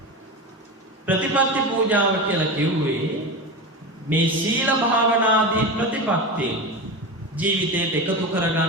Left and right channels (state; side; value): normal; both; correlation 0.23